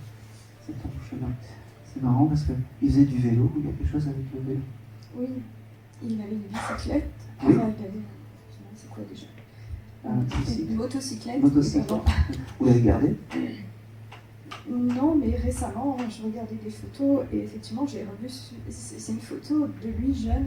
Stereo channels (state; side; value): identical; both; correlation 1.00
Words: C'est ton chemin. C'est marrant parce qu'il faisait du vélo. Il y a quelque chose avec le vélo. Oui, il avait une bicyclette. Oui. Enfin, il avait... C'est quoi déjà? Une motocyclette. Motocyclette. Vous l'avez gardée? Non, mais récemment, je regardais des photos et effectivement, j'ai revu. C'est une photo de lui jeune